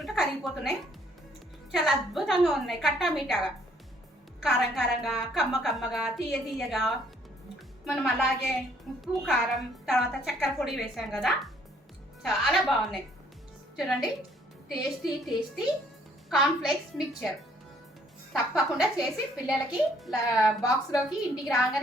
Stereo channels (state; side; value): normal; both; correlation 0.64